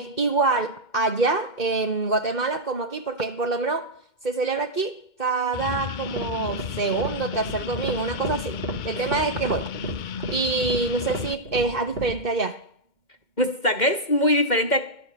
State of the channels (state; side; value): late; right; 2.1 ms